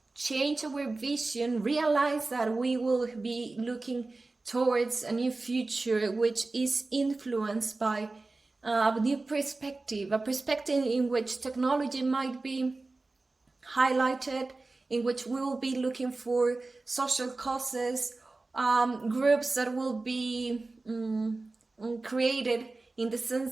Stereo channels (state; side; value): quieter; left; 3.4 dB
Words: change our vision, realize that we will be looking towards a new future which is influenced by a new perspective, a perspective in which technology might be highlighted, in which we will be looking for social causes, groups that will be created in the